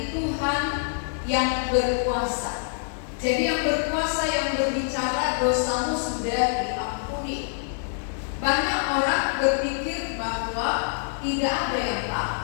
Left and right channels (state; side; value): silent; right; digital silence